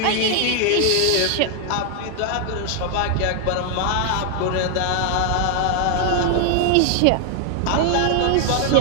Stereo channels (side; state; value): both; different; correlation 0.00